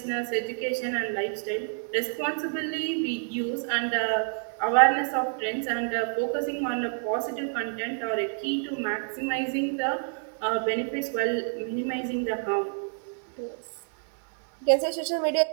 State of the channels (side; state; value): left; silent; 59 dB below the other